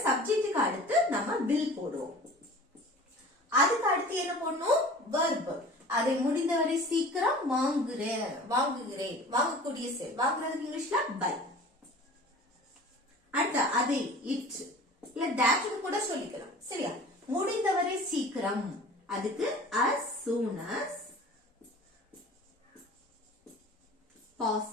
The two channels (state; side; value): normal; both; correlation 0.42